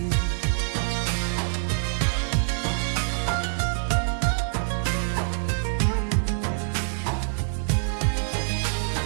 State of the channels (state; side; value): silent; left; digital silence